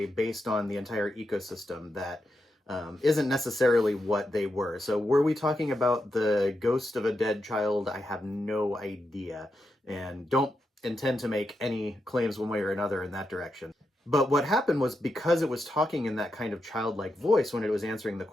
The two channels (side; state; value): both; normal; correlation 0.86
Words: based on the entire ecosystem that isn't necessarily what they were. So were we talking about the ghost of a dead child? I have no idea and don't intend to make any claims one way or another in that direction. But what happened was, because it was talking in that kind of childlike voice when it was answering the